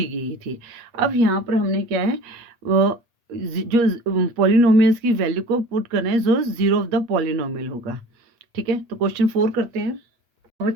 गई थी। अब यहाँ पर हमने क्या है, जो पॉलिनोमियल्स की वैल्यू को पुट करना है जो जीरो ऑफ द पॉलिनोमियल होगा। ठीक है, तो क्वेश्चन 4 करते हैं।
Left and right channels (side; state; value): left; late; 8.5 ms